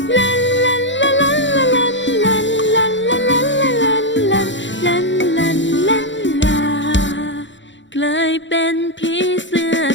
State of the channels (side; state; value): right; late; 0.54 ms